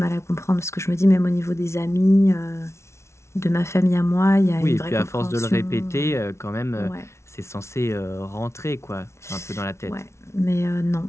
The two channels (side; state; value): right; late; 0.13 ms